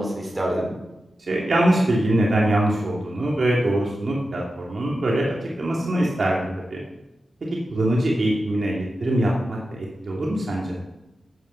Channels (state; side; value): normal; both; correlation 0.91